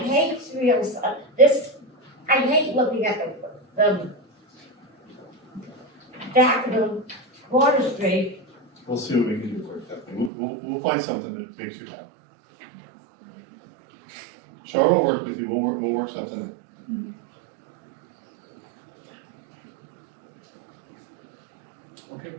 I hate looking at the Daffodil Water Street. We'll see what we can do for you, Kathleen. We'll find something that makes you happy. Char will work with you, we'll work something in. Okay.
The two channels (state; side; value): drops out; left; at 10.3 s